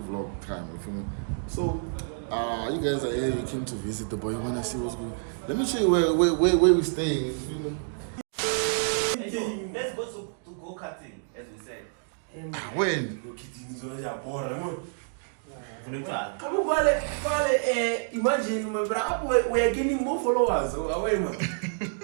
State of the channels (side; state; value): left; silent; digital silence